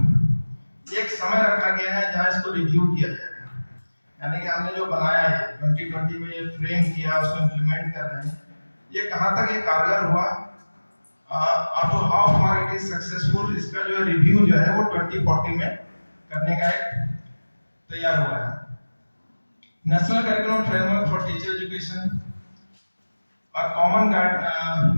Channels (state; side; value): inverted; both; correlation -1.00